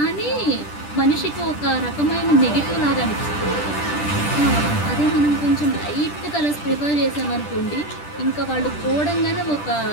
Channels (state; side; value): late; right; 10 ms